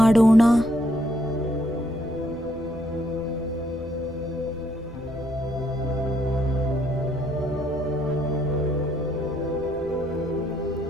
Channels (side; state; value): left; noise; hum, 18 dB below the sound